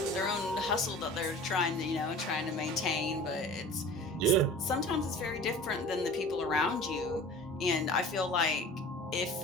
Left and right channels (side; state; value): both; normal; correlation 0.41